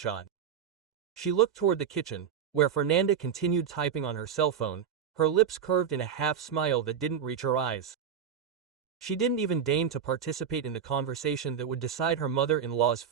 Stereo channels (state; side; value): quieter; left; 7.8 dB